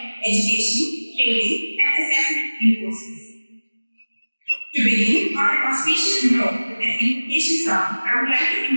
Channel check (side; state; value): both; inverted; correlation -1.00